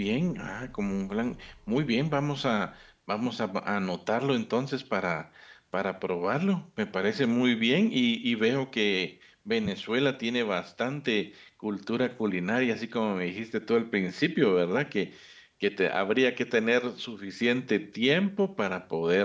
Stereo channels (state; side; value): identical; both; correlation 1.00